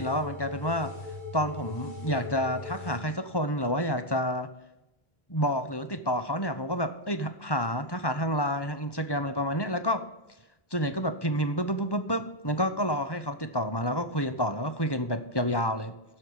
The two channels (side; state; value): right; late; 1.1 ms